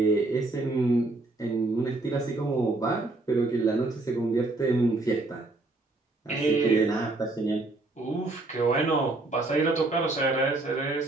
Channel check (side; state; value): left; quieter; 3.1 dB